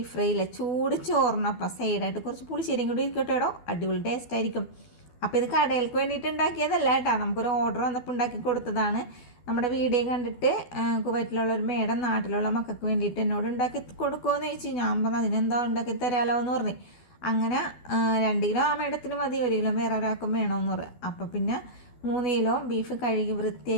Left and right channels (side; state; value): right; late; 12 ms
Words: fry ഇല്ലേ, ചൂട് ചോറിനപ്പം സൈഡായിട്ട് കുറച്ച് പുളിശ്ശേരിയും കൂടി ഇരിക്കട്ടെ കേട്ടോ, അടിപൊളി ടേസ്റ്റ് ആയിരിക്കും. അപ്പോൾ ഇത് കടയിലേക്ക് വേണ്ടിയിട്ട് ഉണ്ടാക്കിയതല്ല കേട്ടോ, നമുക്കൊരു ഓർഡർ വന്നപ്പോൾ ഉണ്ടാക്കി കൊടുത്തതാണ്. നമ്മുടെ വീഡിയോ കണ്ടിട്ട് കുവൈറ്റിലുള്ള ഒരു മേഡം നാട്ടിലുള്ള മക്കൾക്ക് വേണ്ടിയിട്ട് എന്നോട് ഉണ്ടാക്കി കൊടുക്കുമെന്ന് ചോദിച്ചു. ഞാൻ പറഞ്ഞു അതിനെന്താ ഉണ്ടാക്കി തരാമല്ലോ എന്ന് പറഞ്ഞു. അങ്ങനെ 2 കിലോ ആ മേഡത്തിന് മതി, 1 കിലോ വേറെ ഒരാൾക്കും വേണമെന്ന് പറഞ്ഞു. അപ്പം പിന്നെ 3 കിലോ ബീഫ് കഴുകി